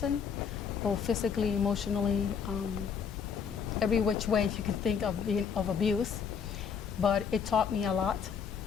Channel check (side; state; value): right; quieter; 6.7 dB